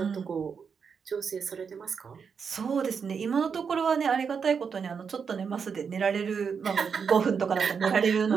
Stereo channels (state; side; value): quieter; left; 6.2 dB